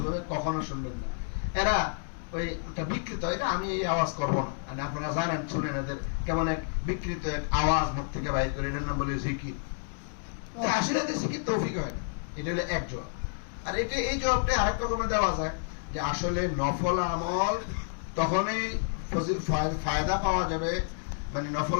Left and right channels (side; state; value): right; silent; 58 dB below the other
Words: কখনো শুনবেন না। এরা ওই একটা বিকৃত, এটা আমি এই আওয়াজ করবো না, মানে আপনারা জানেন, শুনেন এদের কেমন এক বিকৃত এক আওয়াজ মুখ থেকে বাইরে করে, এটার নাম বলে জিকির। আসলে জিকির তৌফিক হয় না। এটা হলো এক জবাব। আর এটা এই জবাবটা আরেক রকমের দেওয়া যায় যে আসলে নফল আমল তখনই ফায়দা পাওয়া যাবে, মানে